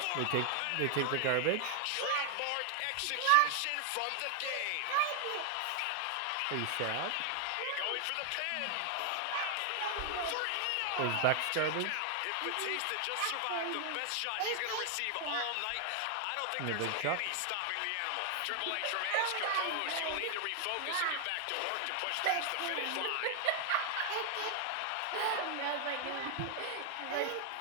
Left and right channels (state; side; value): different; both; correlation 0.00